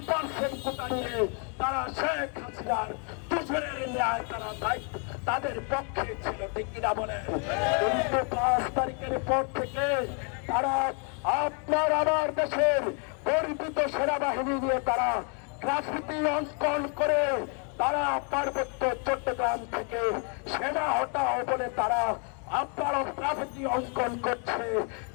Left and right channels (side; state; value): right; quieter; 36.2 dB